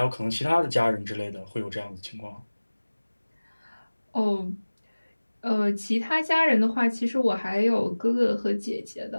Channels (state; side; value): inverted; both; correlation -1.00